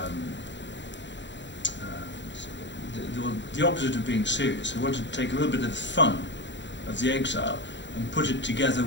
opposite of being serious. We wanted to take a little bit of the fun of the Exile and put it together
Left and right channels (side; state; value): right; late; 0.53 ms